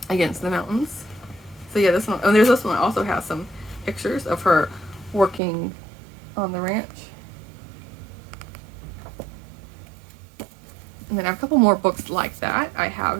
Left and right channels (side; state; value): left; drops out; at 5.4 s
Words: against the mountains. So yeah, this one, and there's this one that also has some pictures of her working on the ranch. And then I have a couple more books like that. I